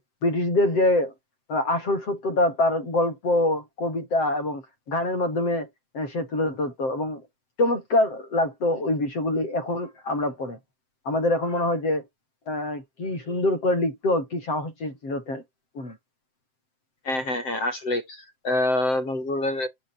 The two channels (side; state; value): right; late; 7.7 ms